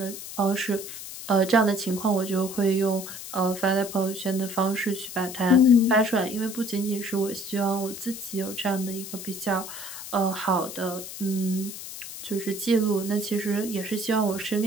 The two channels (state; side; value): noise; left; hiss, 10 dB below the sound